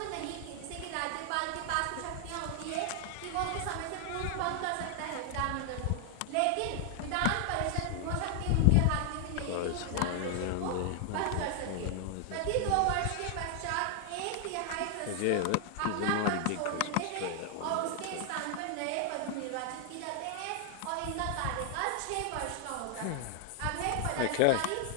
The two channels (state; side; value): different; both; correlation 0.00